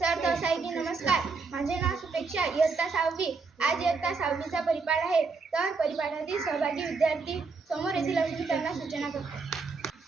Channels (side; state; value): left; quieter; 4.5 dB